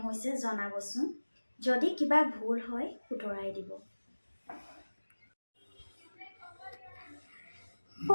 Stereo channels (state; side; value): inverted; both; correlation -1.00